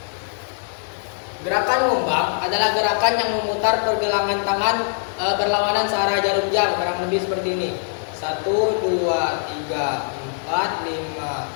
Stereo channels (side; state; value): right; silent; 56 dB below the other